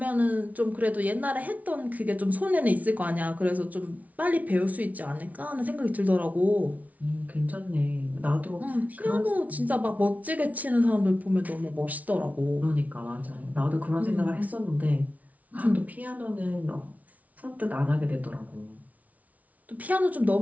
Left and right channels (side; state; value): left; late; 0.071 ms